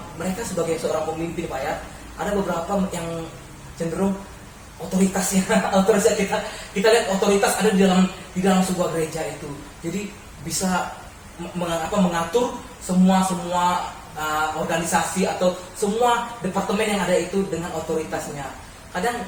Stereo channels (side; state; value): both; identical; correlation 1.00